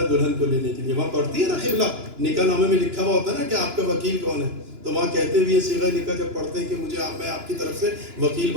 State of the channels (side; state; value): left; late; 2.9 ms